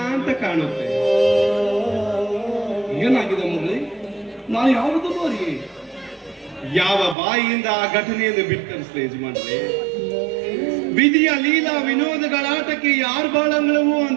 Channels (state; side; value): drops out; left; at 7.2 s